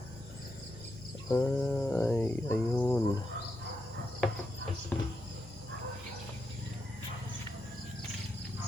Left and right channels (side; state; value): both; normal; correlation 0.84